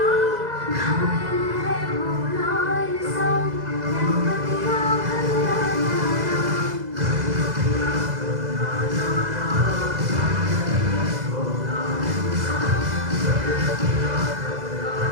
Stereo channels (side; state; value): left; late; 2.0 ms